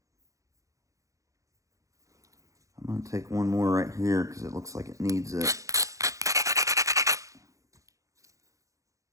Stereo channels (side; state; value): left; late; 0.16 ms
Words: I'm going to take one more right here because it looks like it needs it.